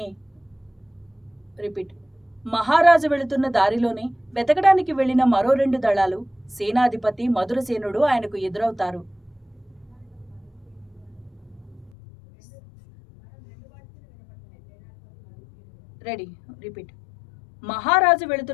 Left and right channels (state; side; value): drops out; right; at 11.9 s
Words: దారిలోనే వెతకడానికి వెళ్లిన మరో 2 దళాలు సేనాధిపతి మధురసేనుడు ఆయనకు ఎదురవుతారు. మహారాజు